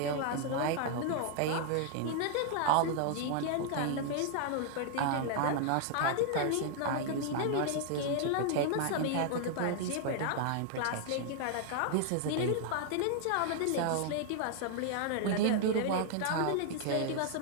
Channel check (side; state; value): both; different; correlation 0.00